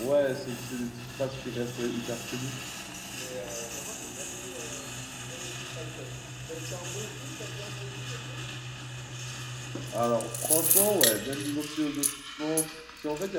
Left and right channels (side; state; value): both; identical; correlation 1.00